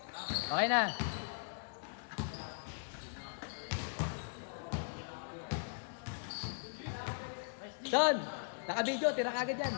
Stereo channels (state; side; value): silent; right; digital silence